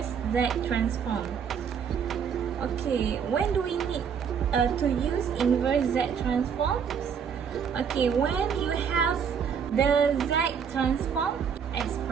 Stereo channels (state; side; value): quieter; left; 7.2 dB